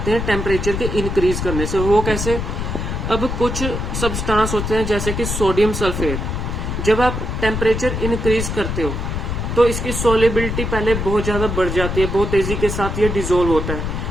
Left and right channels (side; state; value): left; noise; rumble, 3 dB below the sound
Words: हैं टेम्परेचर के इंक्रीज करने से. वो कैसे, अब कुछ सब्सटेंस होते हैं जैसे कि सोडियम सल्फेट. जब आप टेम्परेचर इंक्रीज करते हो तो इसकी सॉल्युबिलिटी पहले बहुत ज्यादा बढ़ जाती है, बहुत तेजी के साथ ये डिसॉल्व होता है.